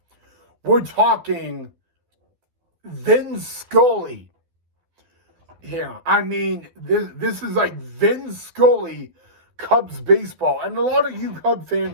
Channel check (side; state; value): left; late; 12 ms